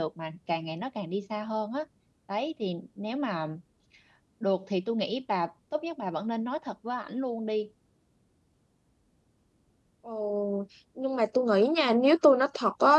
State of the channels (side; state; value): both; identical; correlation 1.00